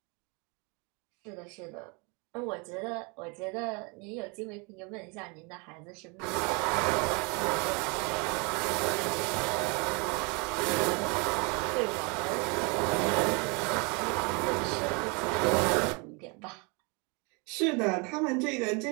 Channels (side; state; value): left; quieter; 31.2 dB